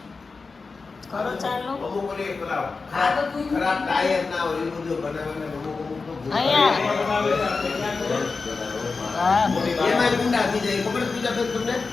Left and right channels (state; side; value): quieter; right; 4.3 dB